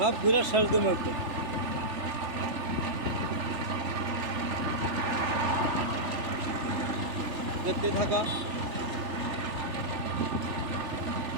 ঘুরে সেরে দেবো একদম। দেখতে থাকা।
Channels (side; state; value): left; late; 3.4 ms